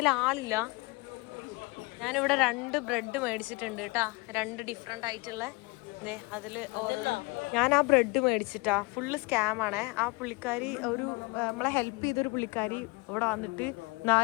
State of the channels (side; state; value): right; quieter; 26.7 dB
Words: ആളില്ല. ഞാനിവിടെ 2 ബ്രെഡ് മേടിച്ചിട്ടുണ്ട് കേട്ടാ, 2 ഡിഫറെൻ്റ് ആയിട്ടുള്ള. അതിൽ ഞാൻ ആ ബ്രെഡ് മേടിച്ചിട്ടാ. ഫുള്ള് സ്കാമാണ്. ആ പുള്ളിക്കാരി നമ്മളെ ഹെൽപ്പ് ചെയ്തൊരു പുള്ളിക്കാരി ഇവിടെ വന്നിട്ട്